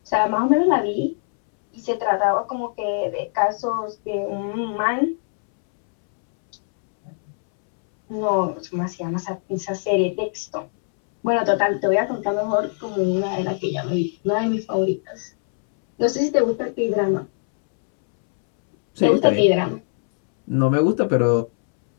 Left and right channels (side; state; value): right; silent; 65 dB below the other